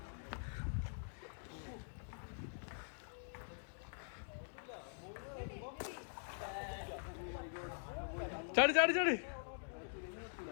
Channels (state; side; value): silent; right; digital silence